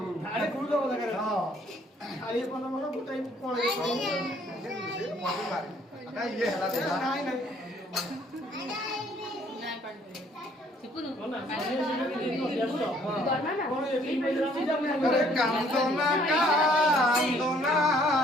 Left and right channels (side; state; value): both; normal; correlation 0.62